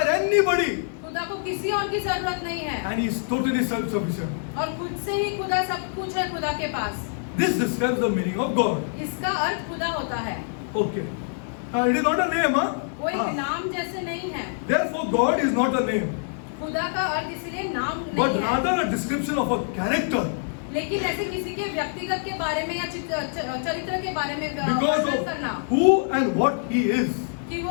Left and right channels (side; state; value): right; silent; digital silence